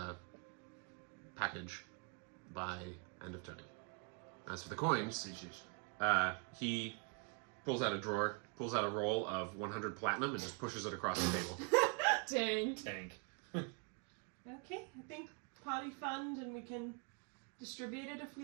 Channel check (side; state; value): left; quieter; 35.8 dB